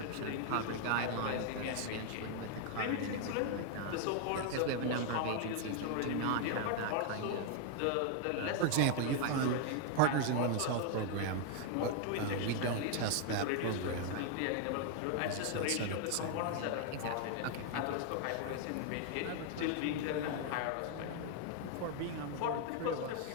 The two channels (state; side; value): different; both; correlation 0.00